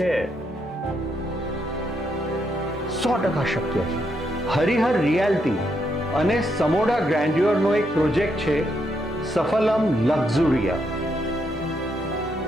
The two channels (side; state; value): both; normal; correlation 0.78